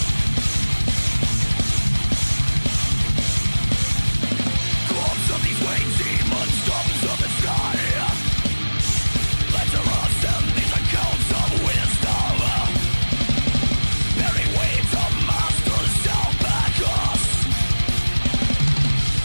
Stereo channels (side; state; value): both; inverted; correlation -1.00